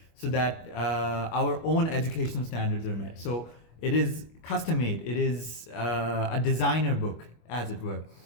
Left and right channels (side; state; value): right; late; 25 ms